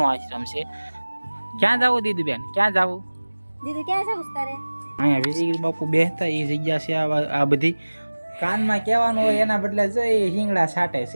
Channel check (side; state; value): both; inverted; correlation -1.00